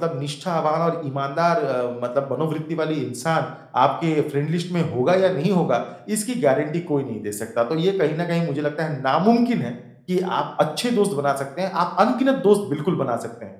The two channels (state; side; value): identical; both; correlation 1.00